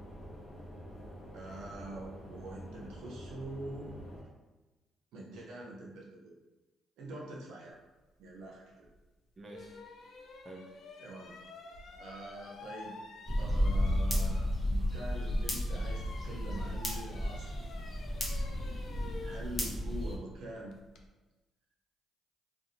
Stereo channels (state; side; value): normal; both; correlation 0.89